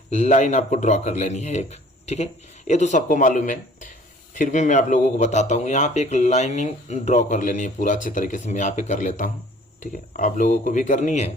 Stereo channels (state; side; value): normal; both; correlation 0.52